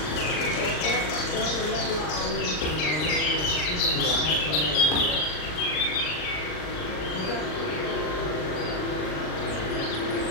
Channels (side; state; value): right; late; 39 ms